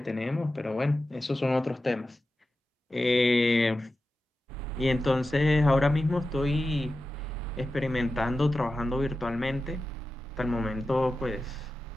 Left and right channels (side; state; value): both; normal; correlation 0.93